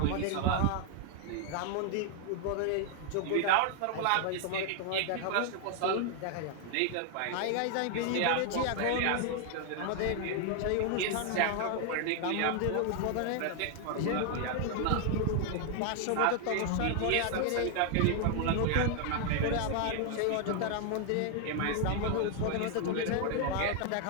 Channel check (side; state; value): both; different; correlation 0.00